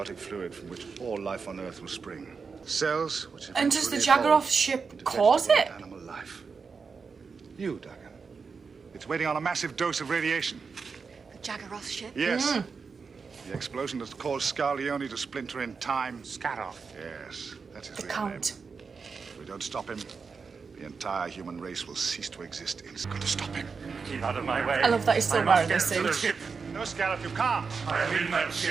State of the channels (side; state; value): left; quieter; 5.2 dB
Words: fluid from which all life on Earth will spring. Cells which And does the eventually evolve Jaggeroth ship into cause vegetable it? and animal life. You, Duggan. It's waiting on a massive dose of radiation. The Jaggeroth ship? Yes. The explosion that caused Scarleone to splinter in time. Scarab. Yes, that's his The real Count. name. If we don't stop him, the entire human race will cease to exist. It's got to stop him. Keep out of my way. I love that he's still I must wearing get this to the suit. ship. No, Scarab, you can't. I am in that